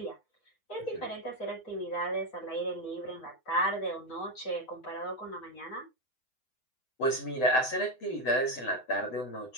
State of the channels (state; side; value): late; right; 7.8 ms